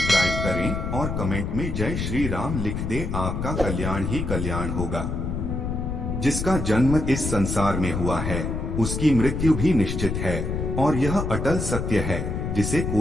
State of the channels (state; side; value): noise; left; rumble, 3 dB below the sound